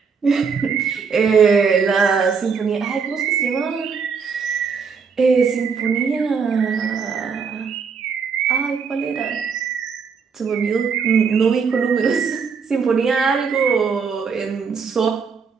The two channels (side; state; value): left; quieter; 5.7 dB